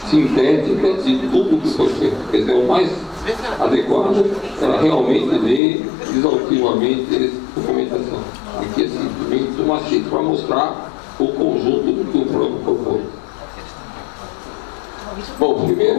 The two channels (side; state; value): right; drops out; at 5.6 s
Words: sintética de tudo que foi feito. Quer dizer, o mais adequado era realmente ler exaustivamente essa documentação. Aqui é simplesmente uma síntese para mostrar o conjunto do que o plano propôs. Bom,